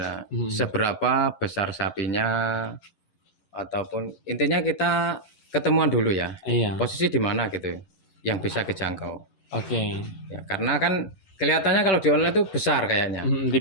seberapa besar sapinya, ataupun intinya kita ketemuan dulu ya. Iya. Posisi di mana gitu yang bisa kejangkau. Oke. Ya, karena kan kelihatannya kalau di online itu besar kayaknya. Di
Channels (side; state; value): right; late; 11 ms